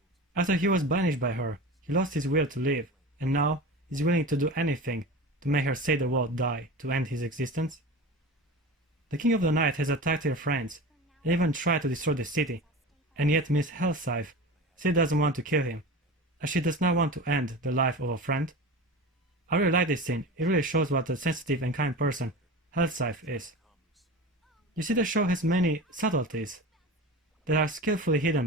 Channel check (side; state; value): both; normal; correlation 0.31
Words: After he was banished by her, he lost his will to live, and now he's willing to do anything to make her say the word die to end his existence. The King of the Night has attacked her friends and even tried to destroy the city, and yet Miss Hellscythe still doesn't want to kill him, as she does not want to end the life of a friend. I really like this scene. It really shows what a sensitive and kind person Hellscythe is. You see, the show has many subtleties that are skillfully hidden